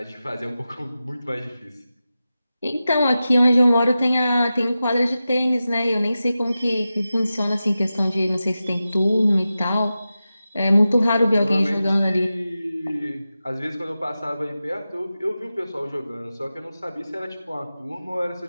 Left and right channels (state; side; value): inverted; both; correlation -0.93